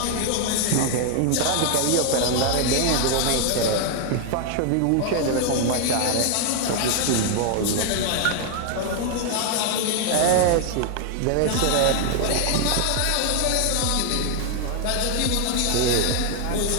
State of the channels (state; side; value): different; both; correlation 0.00